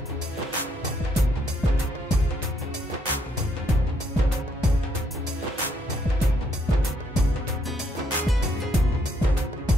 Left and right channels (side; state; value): both; normal; correlation 0.72